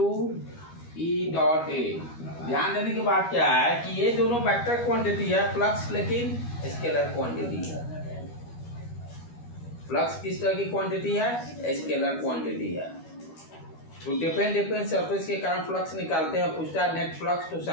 E dot A. ध्यान देने की बात क्या है कि ये दोनों वेक्टर क्वांटिटी है फ्लक्स, लेकिन स्केलर क्वांटिटी है। फ्लक्स किस तरह की क्वांटिटी है? स्केलर क्वांटिटी है। तो डिफरेंट सरफेस के कारण फ्लक्स निकालते हैं, पूछता है नेट फ्लक्स, तो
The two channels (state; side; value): late; right; 12 ms